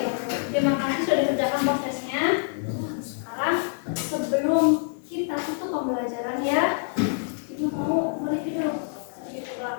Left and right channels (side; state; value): right; silent; 58 dB below the other